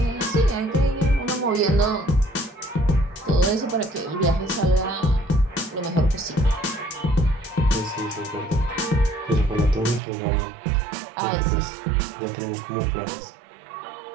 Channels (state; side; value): drops out; left; at 10.0 s